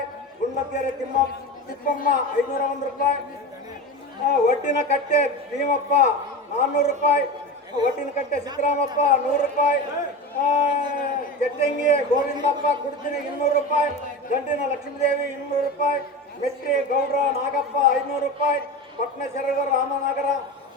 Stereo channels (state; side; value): normal; both; correlation 0.26